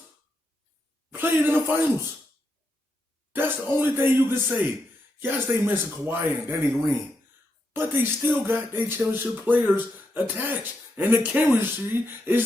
played in the finals. That's the only thing you can say. Yes, they mentioned Kawhi and Danny Green, but they still got their championship players attached, and the chemistry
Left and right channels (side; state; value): both; normal; correlation 0.83